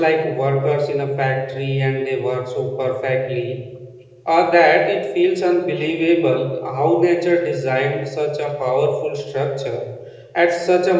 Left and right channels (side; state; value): both; identical; correlation 1.00